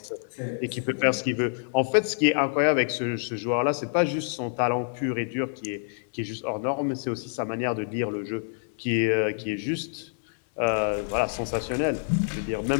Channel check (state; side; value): silent; right; digital silence